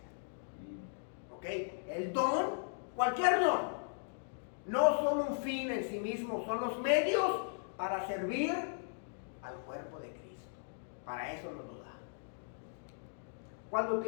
¿Ok? El don, cualquier don, no son un fin en sí mismo, son los medios para servir al cuerpo de Cristo. Para eso nos lo da. Cuando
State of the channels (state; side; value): silent; right; digital silence